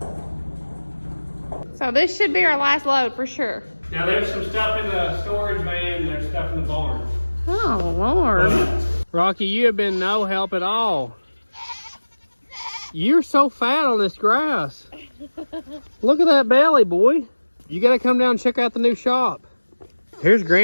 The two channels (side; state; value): both; inverted; correlation -1.00